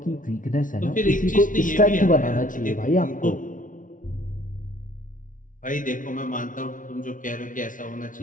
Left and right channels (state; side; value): late; right; 0.38 ms